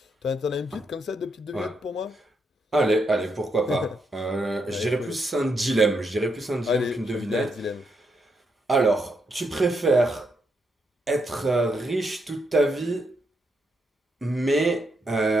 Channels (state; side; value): normal; both; correlation 0.79